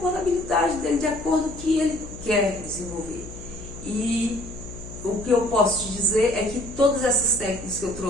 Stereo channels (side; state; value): left; noise; hum, 13 dB below the sound